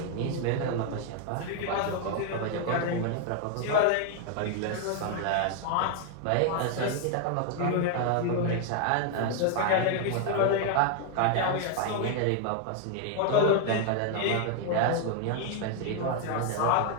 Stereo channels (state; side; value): different; both; correlation 0.00